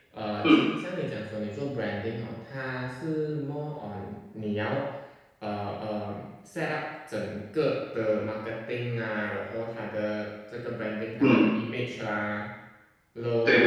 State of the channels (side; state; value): both; identical; correlation 1.00